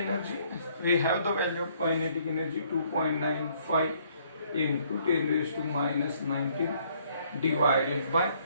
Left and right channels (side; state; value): both; inverted; correlation -0.65